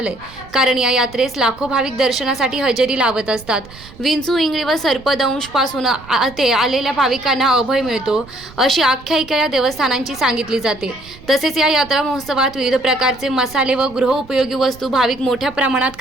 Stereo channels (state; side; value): noise; right; rumble, 20 dB below the sound